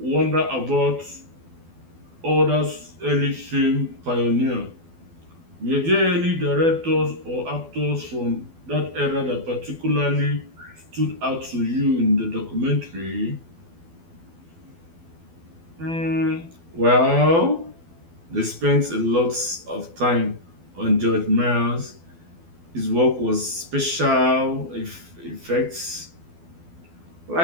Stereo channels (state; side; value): late; left; 12 ms